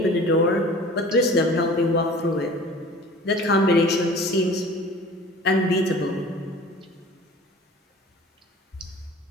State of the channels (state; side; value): normal; both; correlation 0.43